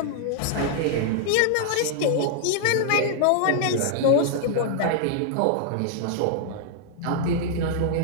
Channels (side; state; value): both; different; correlation -0.01